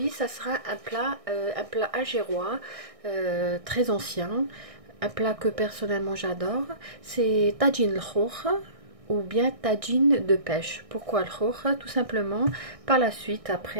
ça sera un plat algérois très ancien, un plat que personnellement j'adore. C'est tagine al-khoukh ou bien tagine de pêche. Pourquoi le khoukh? Tout simplement, par la suite,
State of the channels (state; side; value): late; left; 1.6 ms